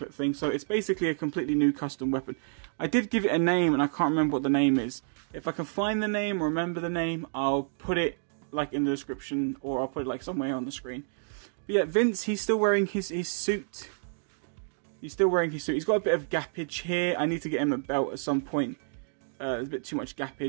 thing. So it's basically a completely new custom weapon. I did give it a name, and I can't remember what the name is. If I can find the name or remember the name, I'll put it like in the description, or I'll put it like somewhere on the screen. But yeah, Vince, he's still wearing his suit. He's still wearing his suit. He's got a bit of gappage here. I need to get him a belt at some point. There's a bit too much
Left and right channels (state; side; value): silent; left; digital silence